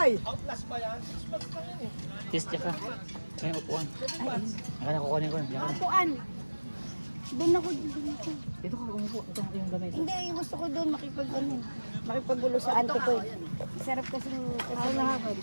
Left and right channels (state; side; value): inverted; both; correlation -1.00